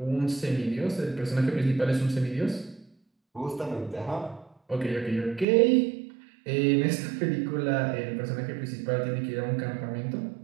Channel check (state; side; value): drops out; left; at 5.5 s